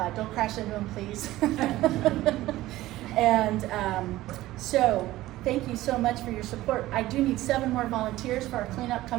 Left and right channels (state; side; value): quieter; left; 16.4 dB